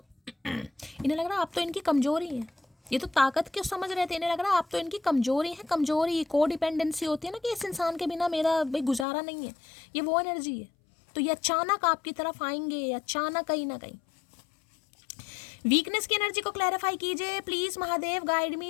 इन्हें लग रहा है आप तो इनकी कमजोरी है। ये तो ताकत क्यों समझ रहे थे, इन्हें लग रहा है आप तो इनकी कमजोरी है। कमजोरी को डिपेंडेंसी होती है ना, कि इस इंसान के बिना मेरा भाई गुजारा नहीं है, ये वो एनर्जी है। तो ये अचानक आपकी तरफ आएंगे, अचानक कहीं ना कहीं। वीकनेस की एनर्जी को क्लैरिफाई कीजिए please Mahadev guide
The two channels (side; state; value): right; drops out; at 9.1 s